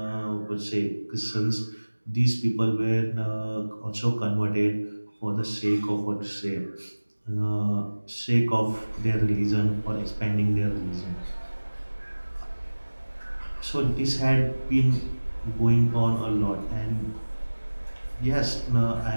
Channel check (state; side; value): inverted; both; correlation -1.00